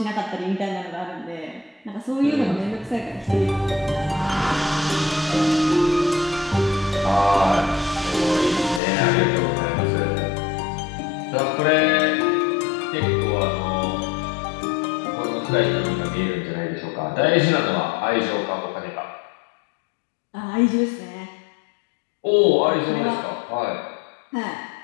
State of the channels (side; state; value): right; drops out; at 8.8 s